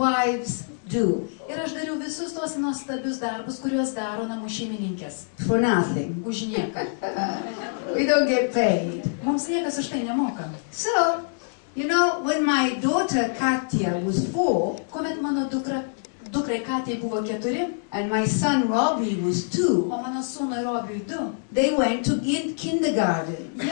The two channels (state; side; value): silent; right; digital silence